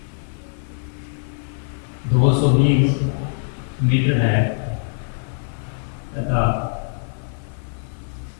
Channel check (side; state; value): right; silent; 59 dB below the other